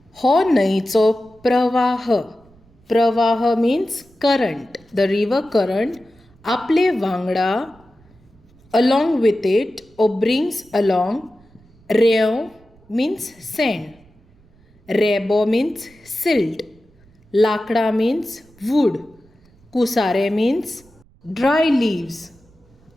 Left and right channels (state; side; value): noise; right; rumble, 30 dB below the sound